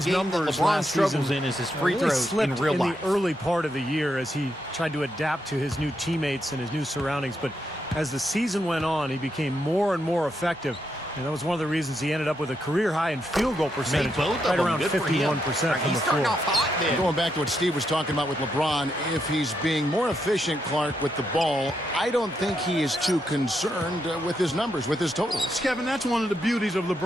the game that numbers LeBron last struggles season in is his free really throws slipped in real life. the early part of the year as he tried to adapt to his new teammates and his new surroundings. But as the season went on, he became more and more effective. And that was one of the reasons he ended up with a career high in field goal percentage, both of right them. around Good for him. 51% Right, from he's the starting floor. off hot then. Going back to what Steve was talking about with LeBron, if he's being more efficient, Clark, with the ball, I don't think he is too concerned with his numbers, with his totals. Kevin, that's one of the beauties of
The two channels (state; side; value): normal; both; correlation 0.81